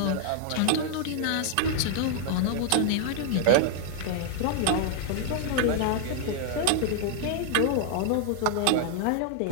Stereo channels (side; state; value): both; different; correlation 0.00